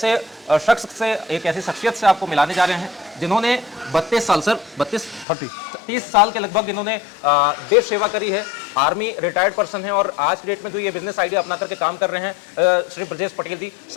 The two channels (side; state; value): right; drops out; at 5.2 s